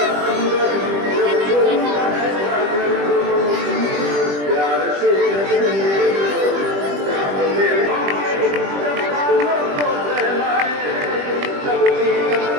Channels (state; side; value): late; left; 20 ms